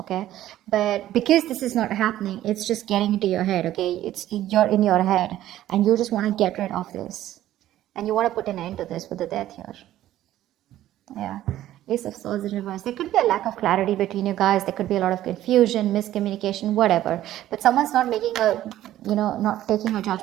But because this is not happening, it's just getting into your head, okay? You're in your head, and you just want to get rid of this, and you want to put an end to this with the Death here. Yeah, Ace of Swords in reverse. There could be a lack of clarity between you guys. There could be a lot of confusion, miscommunication, whatever. But someone's not making not taking a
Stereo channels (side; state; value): left; quieter; 13.4 dB